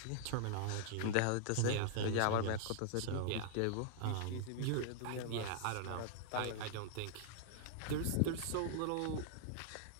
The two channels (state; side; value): different; both; correlation -0.01